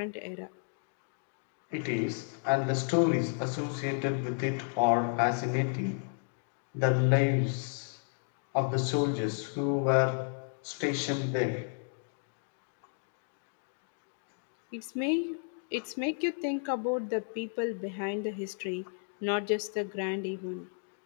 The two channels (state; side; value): silent; right; 56 dB below the other